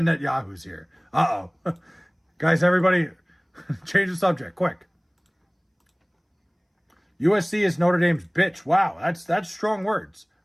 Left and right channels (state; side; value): identical; both; correlation 1.00